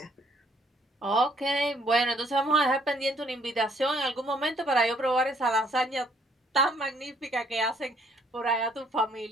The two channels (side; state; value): both; normal; correlation 0.65